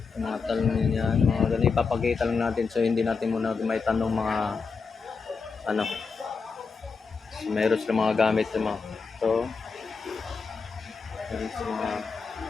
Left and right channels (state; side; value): quieter; right; 5.0 dB